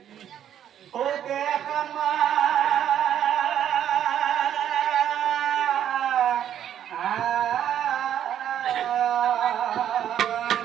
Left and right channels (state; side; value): quieter; left; 10.2 dB